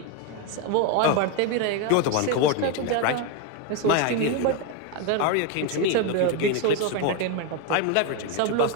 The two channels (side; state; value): both; different; correlation 0.02